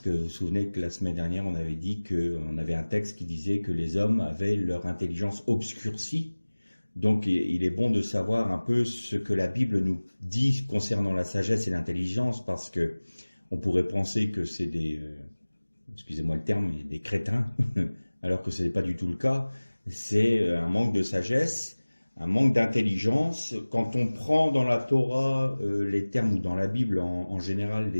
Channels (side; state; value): both; inverted; correlation -1.00